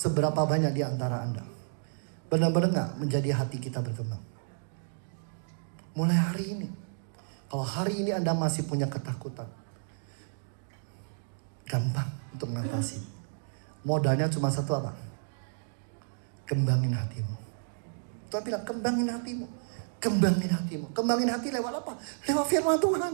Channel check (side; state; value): left; silent; digital silence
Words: banyak di antara Anda benar-benar gak menjadi hati kita berkembang? Mulai hari ini. Kalau hari ini Anda masih punya ketakutan, gampang untuk mengatasi. Modalnya cuma satu apa? Kembangin hatimu. Tuhan bilang kembangin hatimu. Kembangin hatimu. Kembangin hati lewat apa? Lewat firman Tuhan.